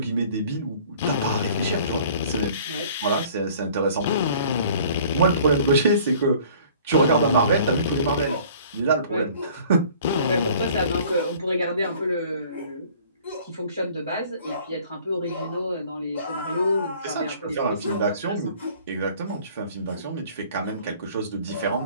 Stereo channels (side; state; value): both; inverted; correlation -0.51